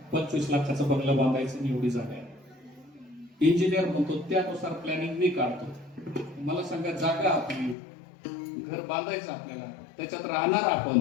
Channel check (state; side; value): drops out; right; at 7.8 s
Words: 25 लाखाचा बंगला बांधायचं आणि एवढी जागा आहे. इंजिनियर म्हणतो त्यानुसार प्लॅनिंग मी काढतो. मला सांगा जागा आपली, घर बांधायचं आपल्याला, त्याच्यात राहणार आपण